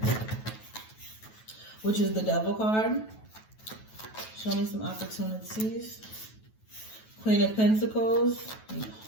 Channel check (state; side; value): late; right; 9.2 ms